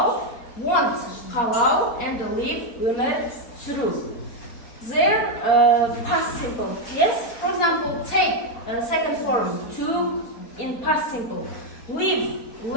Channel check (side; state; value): right; late; 4.3 ms